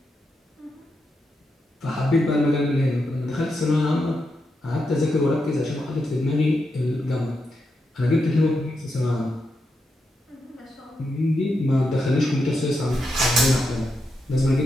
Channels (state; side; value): normal; both; correlation 0.85